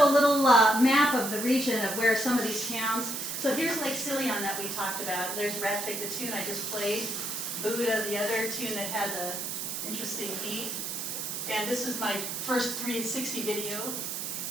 a little map of the region of where some of these towns. So here's Lake Silion that we talked about. There's Rättvik, the tune I just played. Buddha, the other tune that had the interesting beat. And this is my first 360 video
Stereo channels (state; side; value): noise; right; hiss, 4 dB below the sound